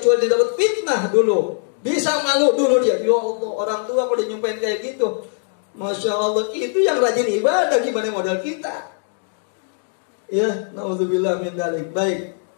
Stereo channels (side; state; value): right; silent; 59 dB below the other